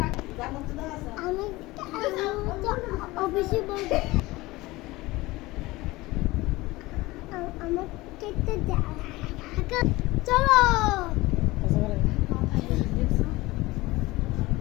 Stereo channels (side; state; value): right; quieter; 20.2 dB